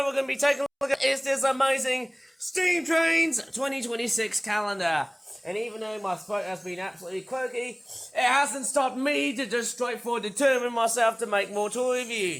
we're going to be taking a look at is this amazing Steam Trains 2026 calendar. And even though my throat has been absolutely croaky, it hasn't stopped me to just straightforward determine myself to make more toy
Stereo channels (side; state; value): both; identical; correlation 1.00